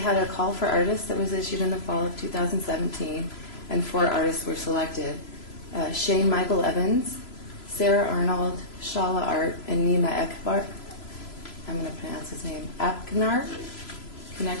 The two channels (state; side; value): late; right; 3.0 ms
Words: a call for artists that was issued in the fall of 2017, and 4 artists were selected. Shane Michael Evans, Sarah Arnold, Shala Art, and Nima Ekbar. I'm going to pronounce his name. Apknar?